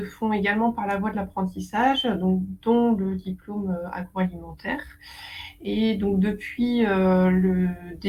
font également par la voie de l'apprentissage, donc dont le diplôme, agroalimentaire. Et donc depuis, le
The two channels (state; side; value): identical; both; correlation 1.00